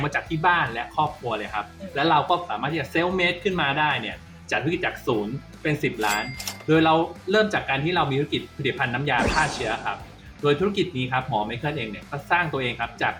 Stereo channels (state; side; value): identical; both; correlation 1.00